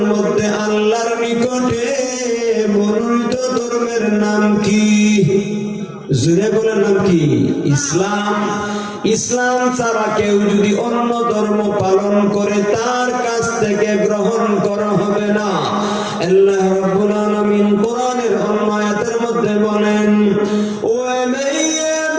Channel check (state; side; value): identical; both; correlation 1.00